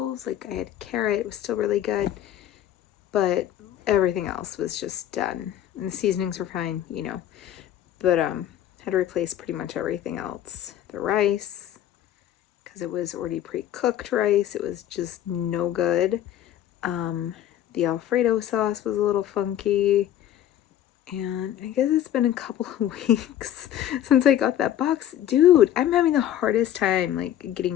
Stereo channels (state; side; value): quieter; right; 11.5 dB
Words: like I had carrot, it was still really good, but everything else was just done. And the seasonings were fine, you know, but had to replace pretty much everything else. The rice, because it was already pre-cooked rice, it was just no good. The Alfredo sauce was a little funky. And I guess it's been a couple of weeks since I got that box. Dude, I'm having the hardest time like